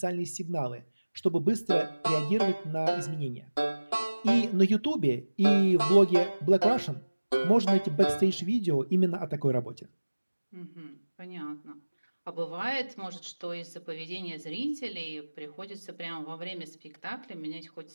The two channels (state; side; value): inverted; both; correlation -1.00